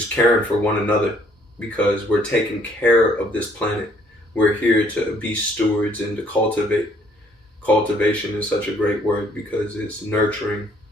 caring for one another, because we're taking care of this planet. We're here to be stewards and to cultivate. Cultivation is such a great word because it's nurturing,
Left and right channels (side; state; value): both; normal; correlation 0.63